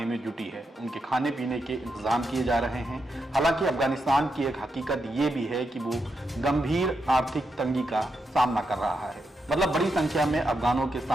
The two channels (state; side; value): normal; both; correlation 0.84